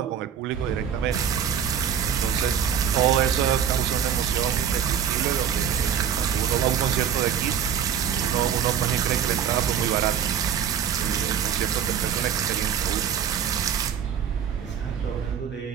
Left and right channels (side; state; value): left; quieter; 8.4 dB